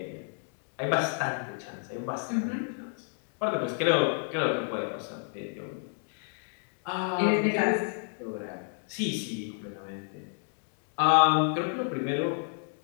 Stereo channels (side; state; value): right; silent; 58 dB below the other